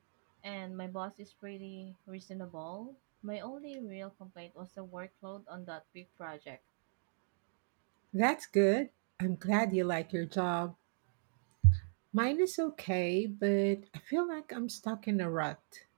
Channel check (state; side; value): silent; left; digital silence